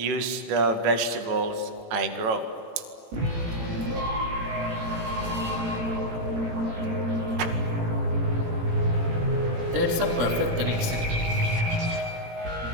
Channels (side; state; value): left; late; 18 ms